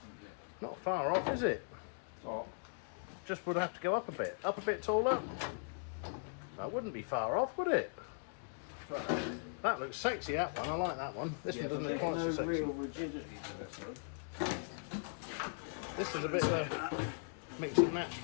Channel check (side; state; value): right; silent; digital silence